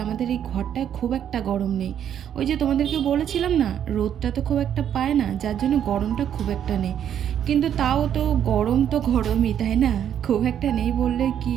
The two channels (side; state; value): left; quieter; 9.5 dB